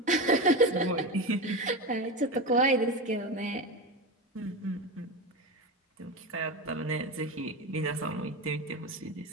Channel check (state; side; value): normal; both; correlation 0.20